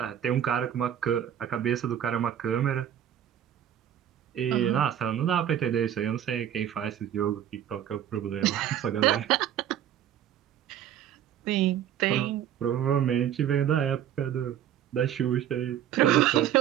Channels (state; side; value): quieter; left; 10.4 dB